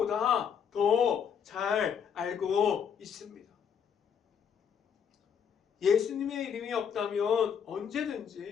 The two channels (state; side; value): quieter; right; 7.5 dB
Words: 더 잘 알고 있습니다. 예수님의 이름이 없다면